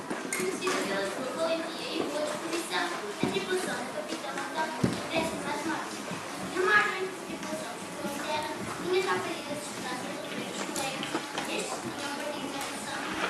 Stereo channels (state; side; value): identical; both; correlation 1.00